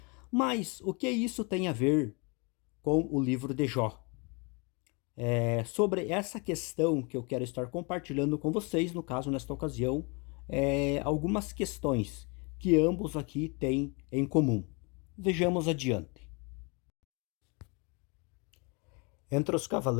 Mas o que isso tem a ver com o livro de Jó? Sobre essa questão que eu quero estar compartilhando com vocês, no caso, nesta ocasião, algumas questões que ambos aqui têm em comum. Vejamos adiante. Entre os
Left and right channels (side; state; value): right; quieter; 31.2 dB